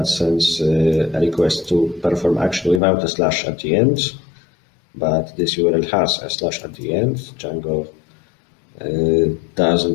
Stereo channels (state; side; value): drops out; right; at 2.8 s